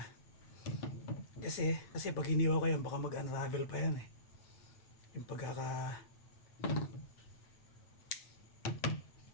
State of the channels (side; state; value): right; late; 8.7 ms